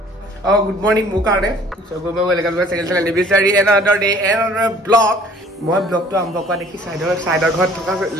গুড মৰ্নিং মোৰ কাৰণে সব মই ৱেলকাম টু চেকেণ্ড চেনেল নিবিচাৰি এনাদাৰ ডে এনাদাৰ ব্লগ মই ব্লগটো আৰম্ভ কৰা দেখি চাইডৰ ঘৰত থকা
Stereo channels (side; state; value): both; normal; correlation 0.53